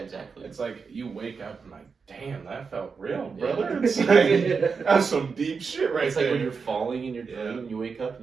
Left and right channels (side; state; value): left; quieter; 5.3 dB